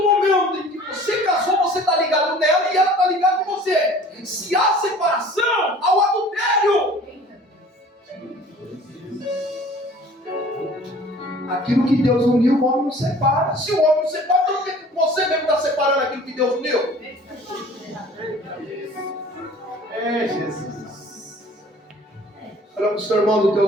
momento em que você casou, você está ligado nela e ela está ligada com você. Se há separação, há o adultério. Aquilo que Deus uniu, o homem não separa. Se o homem não separa, então por que você mesmo está separando aquilo que Deus uniu? É Jesus. Olha para o seu irmão do teu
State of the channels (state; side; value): normal; both; correlation 0.48